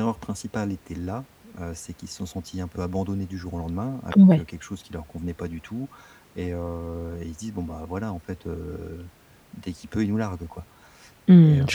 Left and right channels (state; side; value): identical; both; correlation 1.00